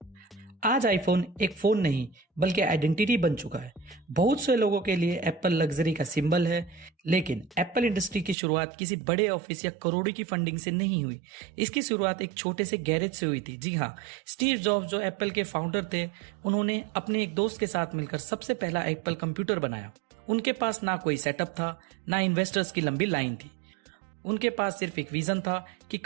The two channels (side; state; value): left; drops out; at 8.3 s